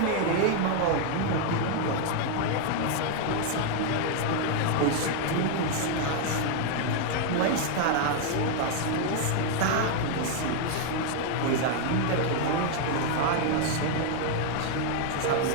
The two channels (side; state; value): both; different; correlation 0.00